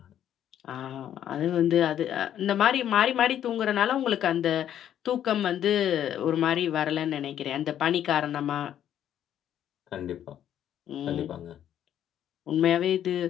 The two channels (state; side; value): quieter; right; 10.5 dB